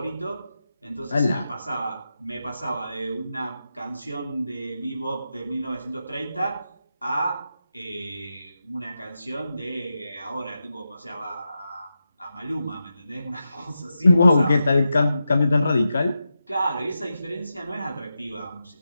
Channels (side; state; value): both; inverted; correlation -0.89